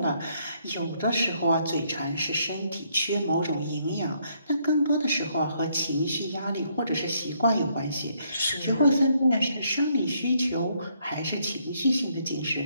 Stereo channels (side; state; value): both; inverted; correlation -0.71